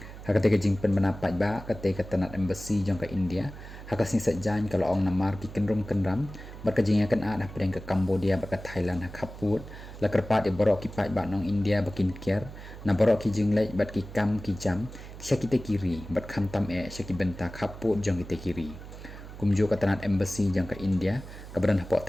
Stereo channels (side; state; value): right; noise; hum, 14 dB below the sound